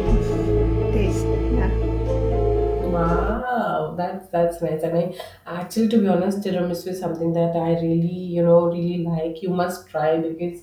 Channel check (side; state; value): both; identical; correlation 1.00